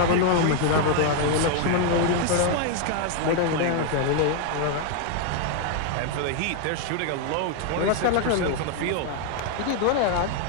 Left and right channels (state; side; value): different; both; correlation 0.00